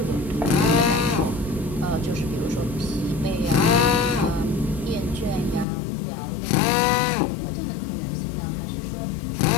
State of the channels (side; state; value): right; drops out; at 5.7 s